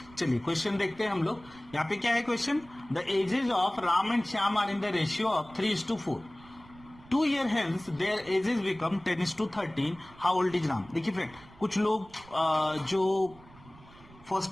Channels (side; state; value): right; noise; rumble, 23 dB below the sound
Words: चलिए क्वेश्चन देखते हैं हम लोग। यहाँ पे क्या है question? The ages of Ram and Shyam are in the ratio of 3:4। 2 year hence their ages become 10:13. How old is Ram? देखिए फ्रेंड, कुछ लोग जो first